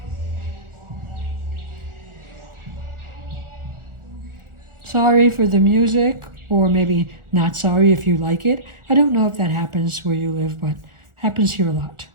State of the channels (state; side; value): late; left; 1.4 ms